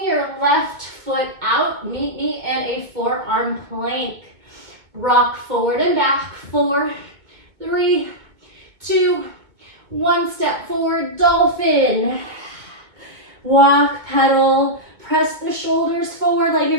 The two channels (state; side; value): late; left; 2.2 ms